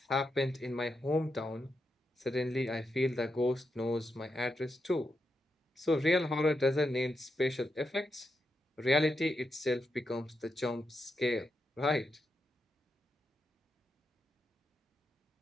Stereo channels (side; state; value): both; normal; correlation 0.85